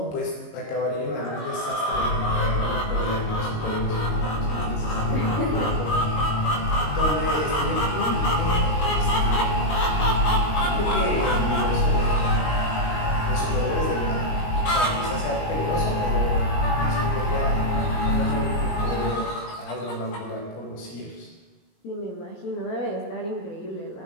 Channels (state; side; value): late; right; 19 ms